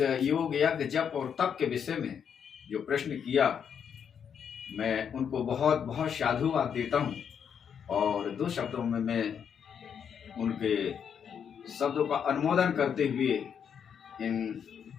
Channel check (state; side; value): quieter; right; 7.7 dB